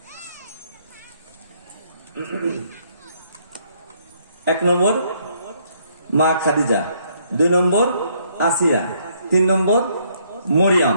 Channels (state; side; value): inverted; both; correlation -0.69